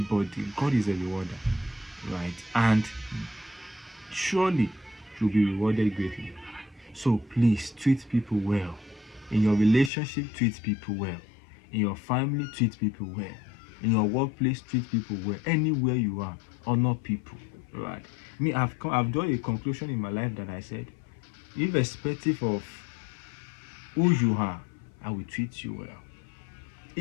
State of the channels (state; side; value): drops out; right; at 9.9 s